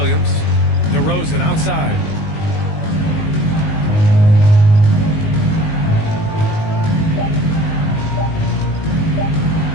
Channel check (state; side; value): late; right; 19 ms